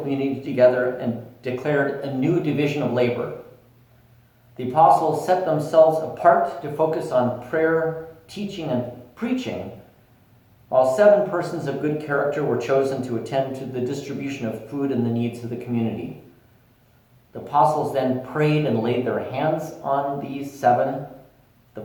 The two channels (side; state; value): both; identical; correlation 1.00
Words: together and declared a new division of labor. The apostles set themselves apart to focus on prayer, teaching, and preaching, while 7 persons of good character were chosen to attend to the distribution of food and the needs of the community. The apostles then prayed and laid their hands on these 7, the